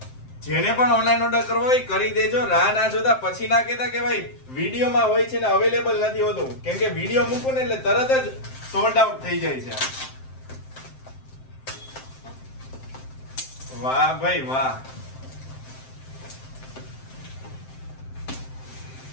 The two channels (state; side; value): late; right; 7.7 ms